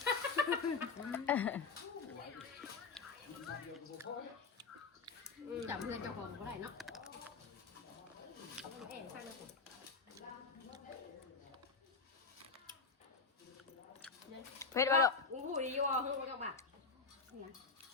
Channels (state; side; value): quieter; right; 4.6 dB